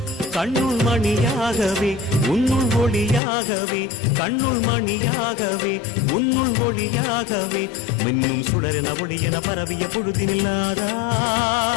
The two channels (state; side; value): drops out; right; at 3.2 s